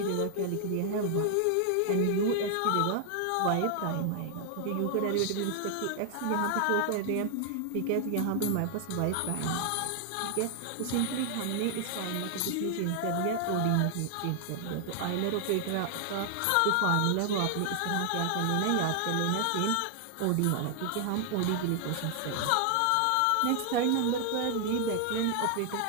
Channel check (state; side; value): different; both; correlation 0.00